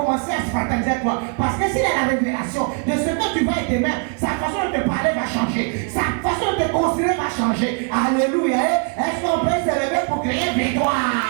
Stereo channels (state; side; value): quieter; left; 37.0 dB